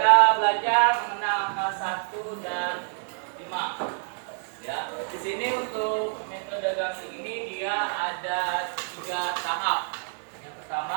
belajar mengenal angka 1 dan 5. Ya, di sini untuk metode gasing ini dia ada 3 tahap. Yang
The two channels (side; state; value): left; silent; 59 dB below the other